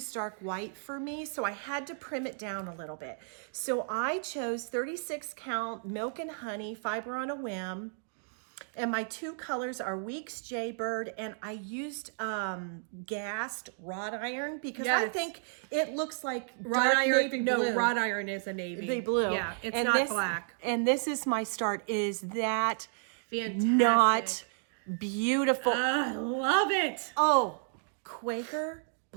white for me, so I had to prim it down a little bit. So I chose 36 count Milk and Honey Fiber on a Whim. And my 2 colors are Weeks Jaybird, and I used gassed wrought iron, because I think it looks like wrought dark iron. navy No, blue. wrought iron is a navy Blue. Yeah, it's And not black. And this is my start. Is that Fantastic. not beautiful? I love it. Oh, Quaker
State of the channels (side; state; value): left; silent; digital silence